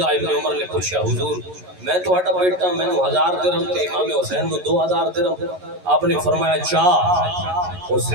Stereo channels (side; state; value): left; late; 11 ms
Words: ابن عمر نے پوچھا حضور میں تو ہٹا بیٹا میں نے 1000 درہم تے امام حسین نے 2000 درہم. آپ نے فرمایا چاہ